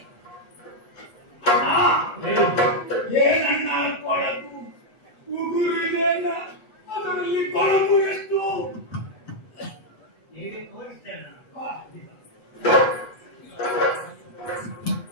ಏನನ್ನ ಕೊಳಕು ಉಗುರು ಇದೆ, ಅದರಲ್ಲಿ ಕೊಳಕು ಎಷ್ಟು ಹೇಗೆ ತೋರಿಸ್ತೇನೆ.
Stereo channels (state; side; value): late; right; 8.1 ms